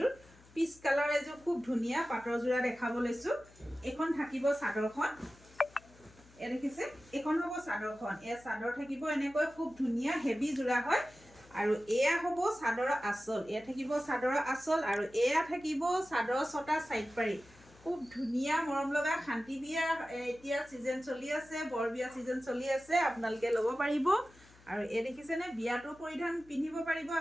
পিচ কালাৰ এযোৰ খুব ধুনীয়া পাটৰ যোৰা দেখাব লৈছো এখন থাকিব চাদৰখন এ দেখিছে এখন হ'ব চাদৰখন এই চাদৰ থাকিব এনেকৈ খুব ধুনীয়া হেভি যোৰা হয় আৰু এয়া হ'ব চাদৰ আসল এয়া থাকিব চাদৰ আসল আৰু এয়া থাকিব চাদৰ ছটা সাইড পাৰি খুব ধুনীয়া মৰম লগা শান্তি বিয়া এতিয়া সিজন চলি আছে বৰ বিয়া সিজন চলি আছে আপোনালোকে ল'ব পাৰিব আৰু এ দেখিছে নে বিয়াটো পৰিধান পিন্ধিব পাৰিব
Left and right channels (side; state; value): left; noise; hum, 25 dB below the sound